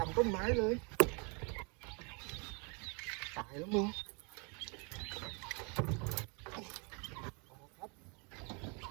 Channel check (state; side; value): quieter; left; 33.3 dB